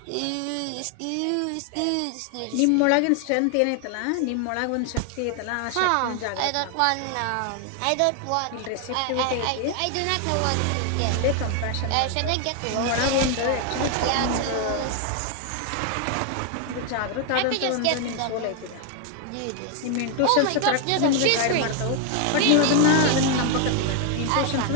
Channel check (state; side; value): different; both; correlation 0.01